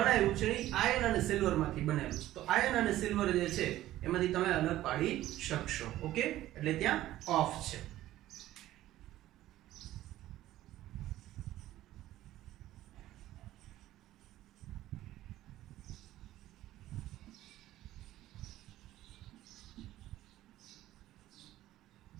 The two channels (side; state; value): left; quieter; 14.6 dB